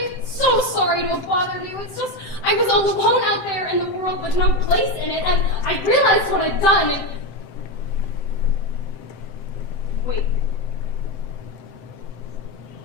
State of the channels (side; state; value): right; late; 7.7 ms